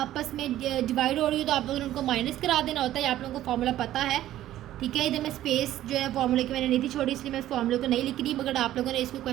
में डिवाइड हो रही हो तो आप लोगों ने उनको माइनस करा देना होता है। आप लोगों को फार्मूला पता है, ठीक है। इधर मैं स्पेस जो है फार्मूले की मैंने नहीं थी छोड़ी, इसलिए मैं इस फार्मूले को नहीं लिख रही, मगर आप लोगों ने इसको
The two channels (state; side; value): quieter; left; 13.4 dB